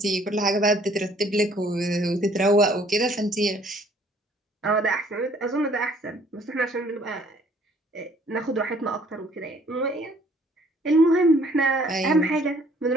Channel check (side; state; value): both; normal; correlation 0.60